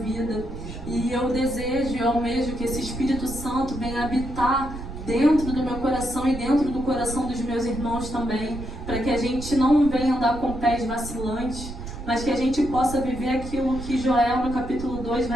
E eu desejo e almejo que esse Espírito Santo venha habitar dentro do meu coração e dentro do coração dos meus irmãos também, para que a gente não venha andar com pés vacilantes, mas que a gente possa viver aquilo que Joel no capítulo 2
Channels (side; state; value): right; noise; rumble, 10 dB below the sound